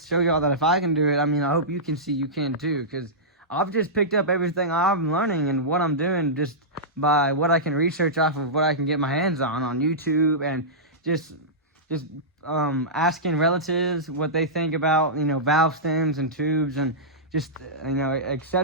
show y'all that if I can do it, I mean, I hope you can see you can too, because I've just picked up everything I'm learning and what I'm doing just by what I can research off of what I can get my hands on YouTube, and just asking relatives what they think about, you know, valve stems and tubes and just, you know,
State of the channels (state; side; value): normal; both; correlation -0.15